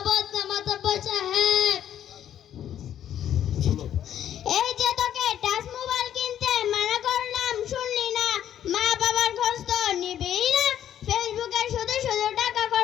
মাতব্বর সাহেব। এই যে তোকে টাচ মোবাইল কিনতে মানা করলাম, শুনলি না। মা বাবার খোঁজ তো নিবিই না, ফেসবুকে শুধু শুধু টাকা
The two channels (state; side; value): quieter; right; 10.5 dB